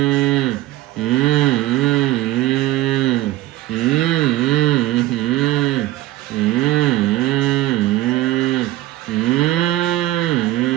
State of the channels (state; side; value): quieter; left; 16.1 dB